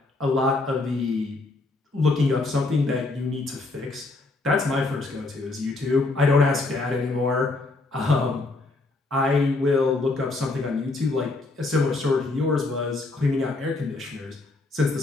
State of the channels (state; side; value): quieter; right; 3.2 dB